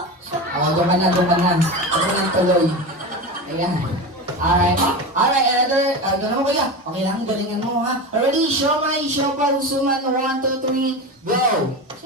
Doon ka na. Doon ka na tuloy. Ayan. Alright. Alright, another. Doon mo kuya. Okay lang, galingan mo ha. Ready? Siomay, siopaw, suman. 1, 2, 3, go!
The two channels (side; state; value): both; normal; correlation 0.24